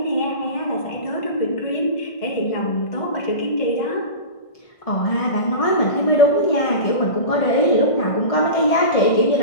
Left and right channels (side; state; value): right; late; 1.6 ms